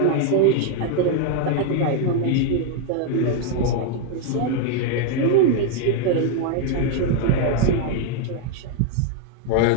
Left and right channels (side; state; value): both; different; correlation 0.00